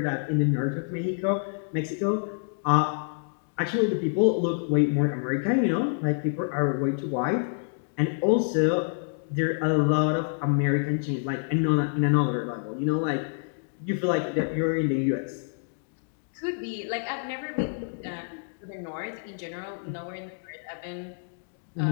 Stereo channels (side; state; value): right; silent; digital silence